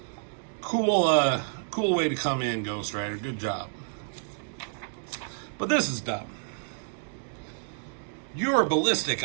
Cool way to come in, Ghost Rider. Good job. But this is dumb. You're Ballistic,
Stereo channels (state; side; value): silent; left; digital silence